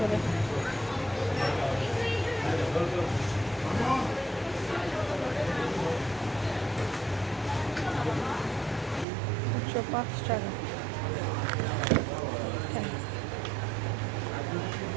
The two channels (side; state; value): left; drops out; at 9.1 s